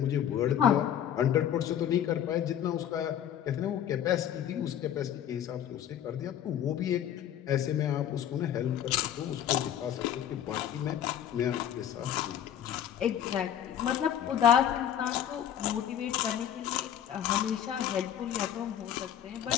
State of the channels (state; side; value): quieter; right; 10.2 dB